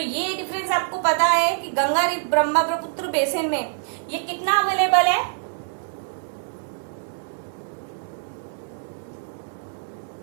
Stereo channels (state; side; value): silent; left; 60 dB below the other